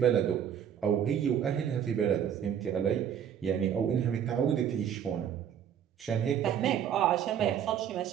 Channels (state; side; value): quieter; left; 9.0 dB